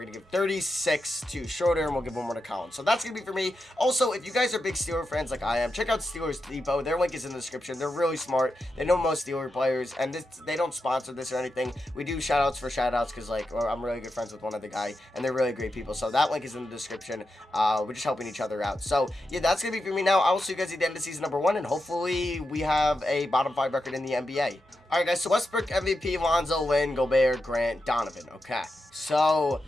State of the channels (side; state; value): both; normal; correlation 0.88